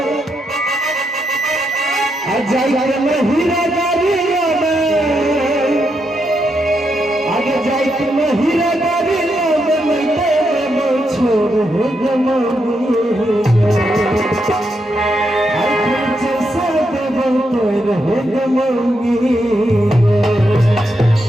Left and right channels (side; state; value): both; normal; correlation 0.81